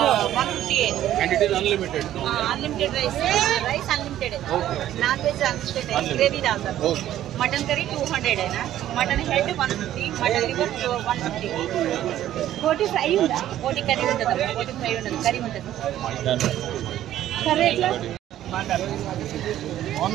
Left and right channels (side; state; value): left; quieter; 12.5 dB